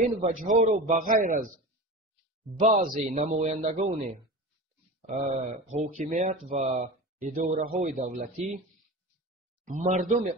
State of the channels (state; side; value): normal; both; correlation 0.30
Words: وجه ها رو بغیر از بعضی نمایندگان حاکمیت و اداره های دولتی مردم